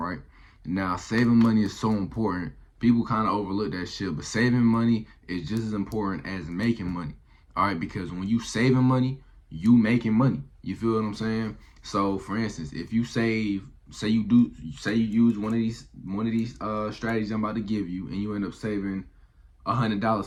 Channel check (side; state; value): both; identical; correlation 1.00